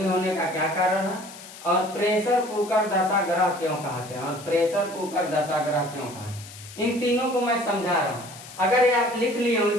होने का क्या कारण है। और प्रेशर कुकर दशा ग्रह क्यों कहते हैं, और प्रेशर कुकर दशा ग्रह क्यों कहते हैं। इन तीनों को मैं समझा रहा हूं। अगर ये आप लिख लिए हो,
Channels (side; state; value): left; noise; hiss, 16 dB below the sound